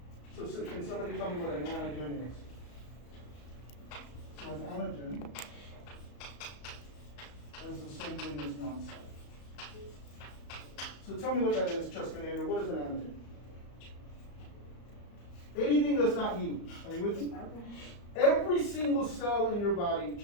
So can somebody tell me what an antigen is? So an antigen is the same thing as non-self. So tell me what that is, Cheskinator. What is an antigen? Anything that's not you. Are you with me? Every single cell in your body,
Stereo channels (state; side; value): late; right; 34 ms